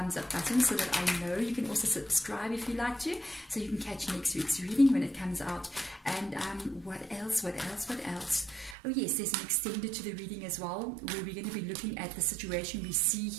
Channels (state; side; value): drops out; left; at 8.8 s